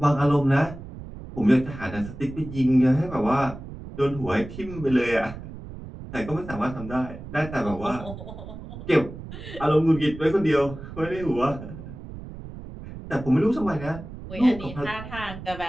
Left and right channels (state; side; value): noise; right; rumble, 12 dB below the sound